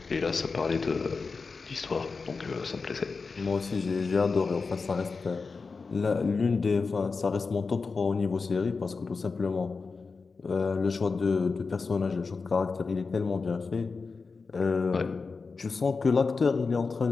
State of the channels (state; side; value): quieter; right; 4.5 dB